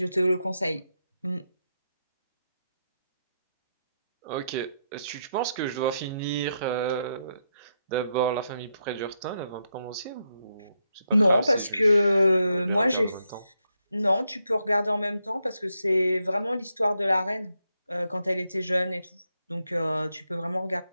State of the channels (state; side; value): inverted; both; correlation -0.82